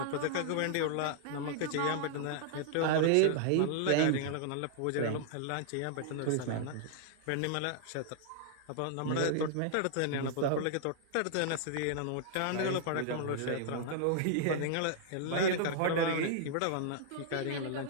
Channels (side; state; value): both; different; correlation -0.01